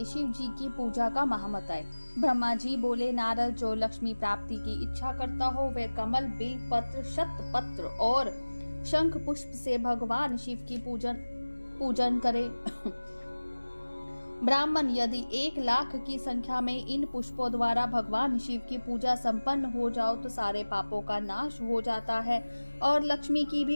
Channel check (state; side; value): inverted; both; correlation -1.00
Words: शिव जी की पूजा का महामत है। ब्रह्मा जी बोले, नारद जो लक्ष्मी प्राप्ति की इच्छा करता हो वह कमल, बिल पत्र, शतपत्र और शंख पुष्प से भगवान शिव की पूजन करे। ब्राह्मण यदि 1,00,000 की संख्या में इन पुष्पों द्वारा भगवान शिव की पूजा संपन्न हो जाओ तो सारे पापों का नाश हो जाता है और लक्ष्मी की